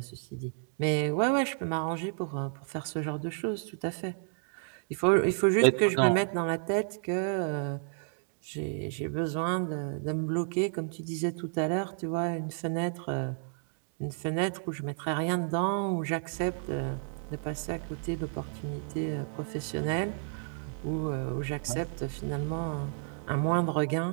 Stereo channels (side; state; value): left; silent; digital silence